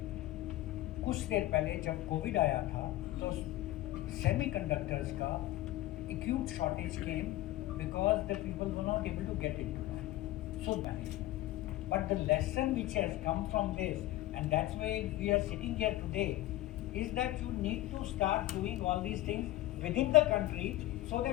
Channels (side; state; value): right; quieter; 16.3 dB